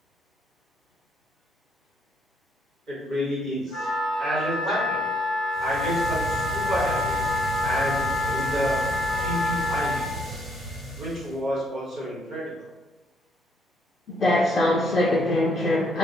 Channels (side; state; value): both; normal; correlation 0.70